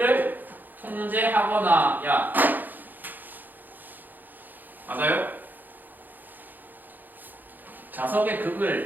통제하거나 야 맞아요? 자석의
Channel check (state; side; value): late; left; 0.087 ms